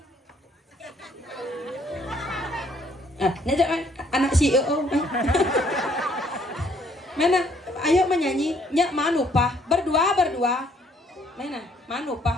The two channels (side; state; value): both; normal; correlation 0.65